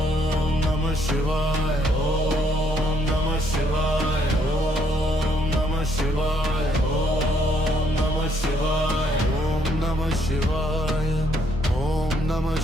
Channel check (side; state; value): both; normal; correlation 0.70